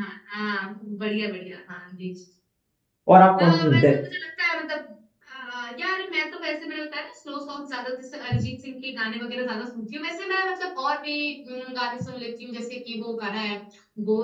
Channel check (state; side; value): identical; both; correlation 1.00